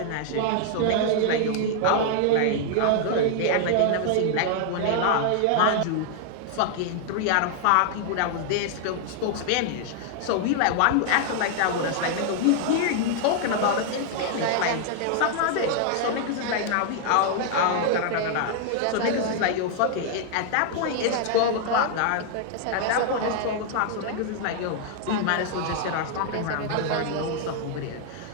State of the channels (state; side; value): different; both; correlation 0.00